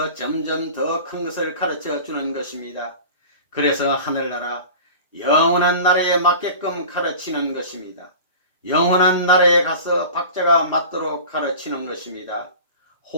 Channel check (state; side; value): inverted; both; correlation -0.37